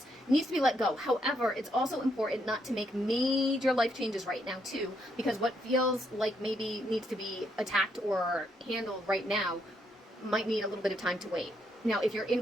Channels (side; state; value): both; normal; correlation 0.76